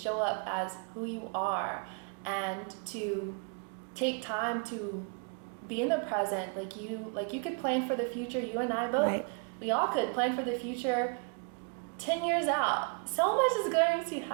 up as who you are, and to take time to be in the present. Like you could plan for the future. You and I both, we all could plan for the future 10 years out. So much is going to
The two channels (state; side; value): quieter; left; 38.0 dB